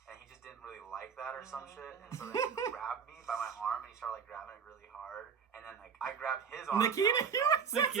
And he just didn't really like that or some shit. And so then he grabbed me by my arm and he started like grabbing it really hard. And then like I grabbed his arm.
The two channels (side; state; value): left; quieter; 6.8 dB